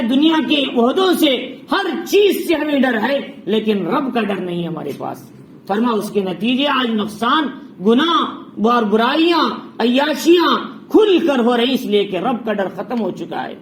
دنیا کے عہدوں سے، ہر چیز سے ہمیں ڈر ہے، لیکن رب کا ڈر نہیں ہمارے پاس۔ فرما اس کے نتیجے آج نقصان، گناہ اور برائیاں، عیاشیاں کھل کر ہو رہی، اس لیے کہ رب کا ڈر ختم ہو چکا ہے۔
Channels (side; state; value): both; identical; correlation 1.00